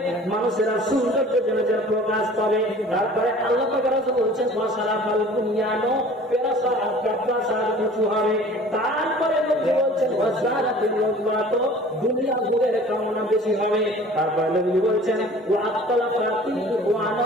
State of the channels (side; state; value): both; normal; correlation 0.47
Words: মানুষেরা সৌন্দর্য জনজের প্রকাশ পাবে। তারপরে আল্লাহ পাক রাসূল বলছেন ওয়াসারাফাল বুনিয়ানো, প্রাসাদ উঁচু হবে। তারপরে নবী বলছেন ওয়াজারাতিল ওয়াজওয়াত, দুনিয়া ভোগের কামনা বেশি হবে। তারপরে নবী বলছেন ওয়াক্তালাফাতিল ওয়ানা,